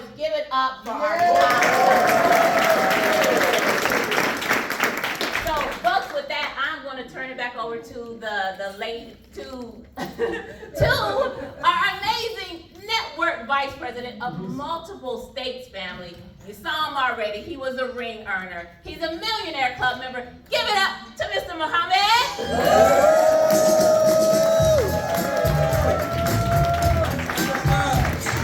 Give it up for our top. So, folks, with that, I'm going to turn it back over to to our amazing network vice president of multiple states family. You saw him already. He was a ring earner. He's a Millionaire Club member. Give it up to Mr. Muhammad.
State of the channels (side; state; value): both; identical; correlation 1.00